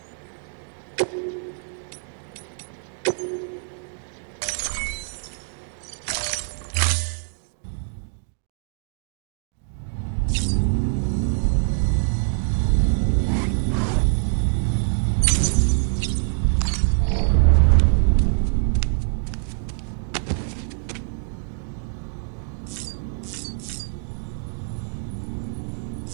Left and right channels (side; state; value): left; silent; digital silence